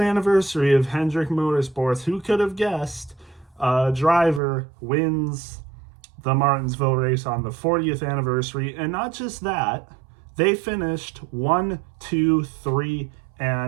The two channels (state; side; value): drops out; left; at 4.4 s